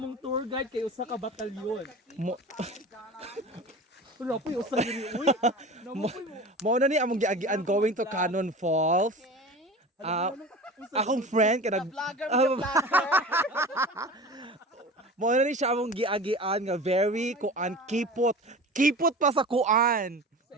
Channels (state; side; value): normal; both; correlation 0.35